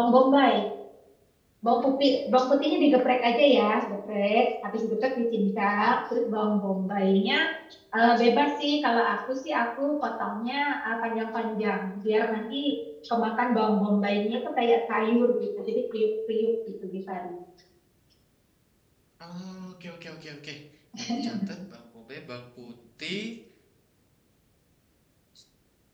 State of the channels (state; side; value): identical; both; correlation 1.00